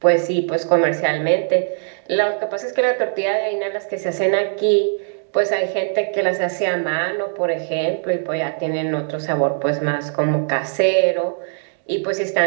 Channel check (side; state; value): left; silent; digital silence